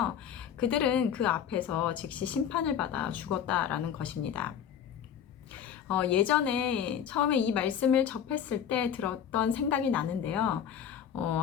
그들은 그 앞에서 즉시 심판을 받아 죽었다라는 것입니다. 예전에 처음에 이 말씀을 접했을 때 들었던 생각이 나는데요.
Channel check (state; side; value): quieter; right; 8.7 dB